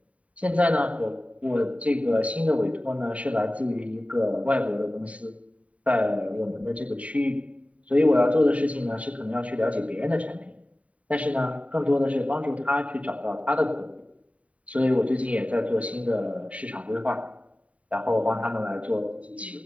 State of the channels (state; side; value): late; left; 0.067 ms